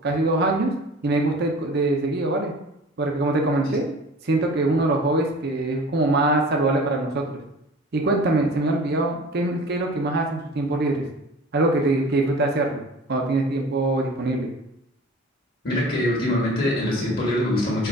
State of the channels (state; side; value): normal; both; correlation 0.42